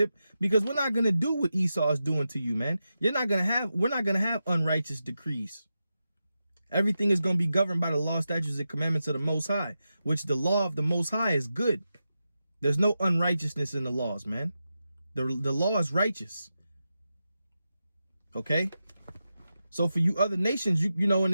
because we're not gonna do what Esau is doing to you, man. We're not gonna have unrighteous decrees. Everything is gonna be governed by the law, statutes, and commandments of the Most High, which the law of the Most High is good. There's no unrighteousness in the laws, man. The law is righteous. Okay? So for you other nations, you know, in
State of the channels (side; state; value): both; inverted; correlation -0.90